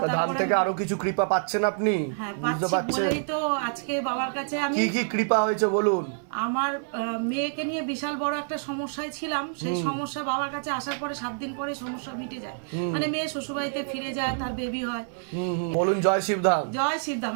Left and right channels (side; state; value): left; silent; 60 dB below the other